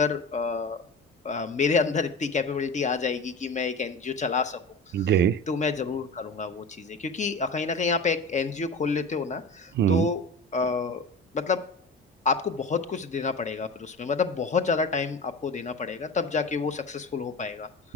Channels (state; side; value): normal; both; correlation 0.31